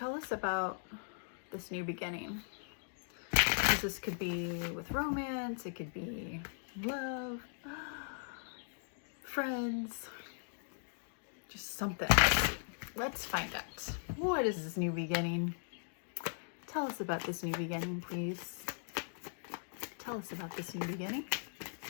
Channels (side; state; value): right; silent; digital silence